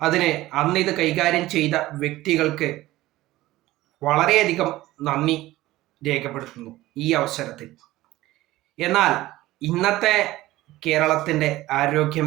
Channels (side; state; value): left; quieter; 17.0 dB